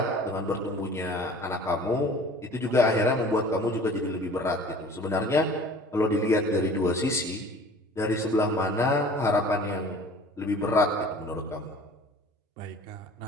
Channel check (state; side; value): normal; both; correlation 0.46